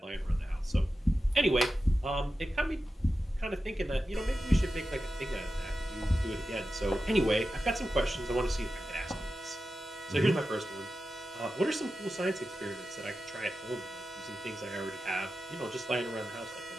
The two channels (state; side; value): normal; both; correlation 0.92